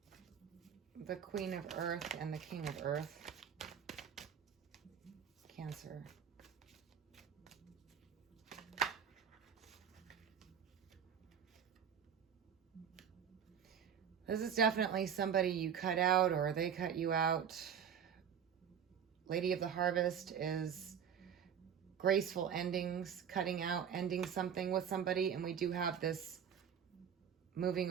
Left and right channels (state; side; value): quieter; left; 8.1 dB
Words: the Queen of Earth and the King of Earth. Cancer. This is definitely somebody you cut out or they cut you out. Lady of the Harvest is graceful endings, cutting out, ending something with somebody, and we do have this moving